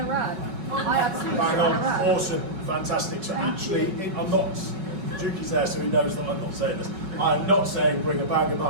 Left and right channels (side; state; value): left; late; 5.3 ms